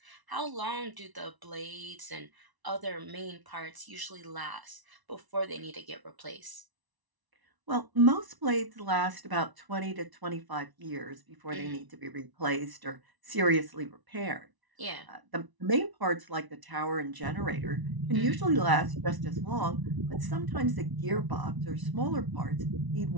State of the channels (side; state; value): left; late; 1.0 ms